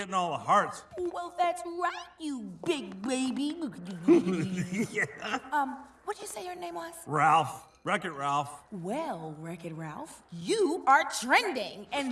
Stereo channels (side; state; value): both; identical; correlation 1.00